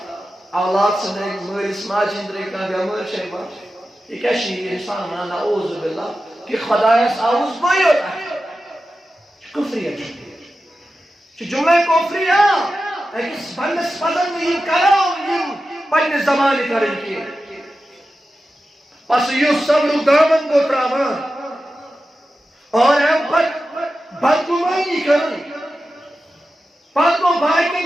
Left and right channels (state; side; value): normal; both; correlation 0.92